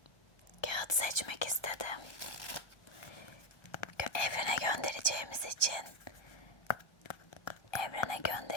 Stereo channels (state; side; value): late; right; 1.3 ms